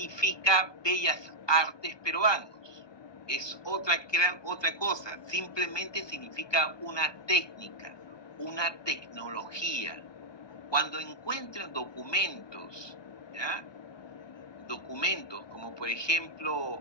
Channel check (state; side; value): late; right; 1.2 ms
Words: bellas artes peruanos. Es otra cosa. Simplemente significa una técnica, una tecnología. Cuando encuentren documentos, ¿ya? Documentos como por ejemplo